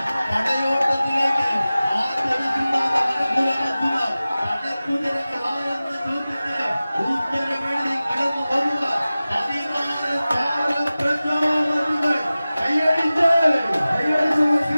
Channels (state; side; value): inverted; both; correlation -0.97